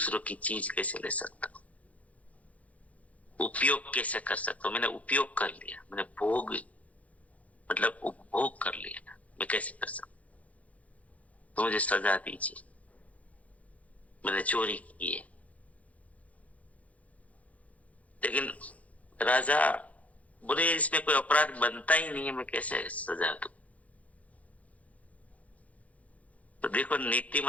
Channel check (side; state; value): right; late; 0.068 ms